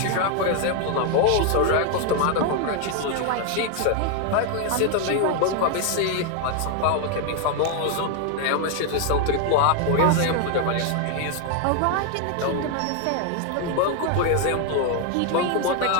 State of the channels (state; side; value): different; both; correlation 0.01